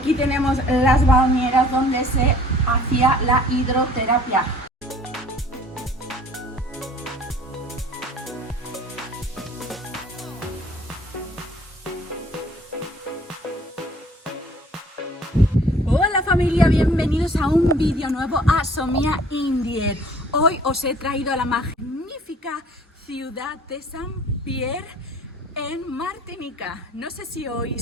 tenemos las bañeras donde se hacía la hidroterapia. Hola familia, bienvenidos a un vídeo nuevo a Somia Indier. Hoy os he traído a la magnífica ciudad de Saint-Pierre en Martinica. No sé si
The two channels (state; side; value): normal; both; correlation 0.53